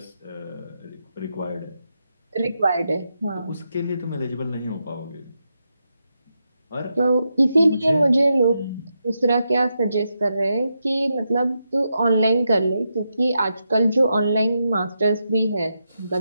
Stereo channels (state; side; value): inverted; both; correlation -0.85